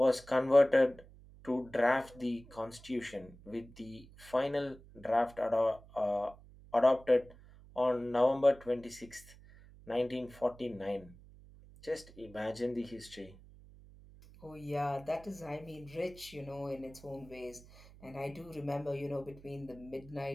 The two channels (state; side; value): noise; right; hum, 21 dB below the sound